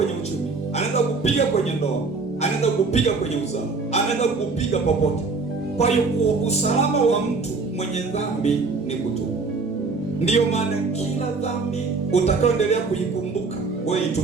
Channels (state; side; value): quieter; left; 4.2 dB